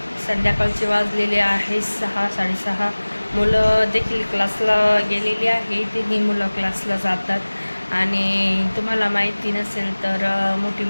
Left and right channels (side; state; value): both; inverted; correlation -1.00